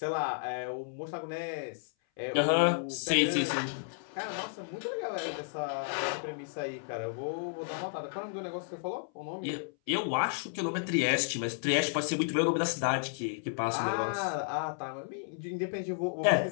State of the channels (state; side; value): silent; right; 56 dB below the other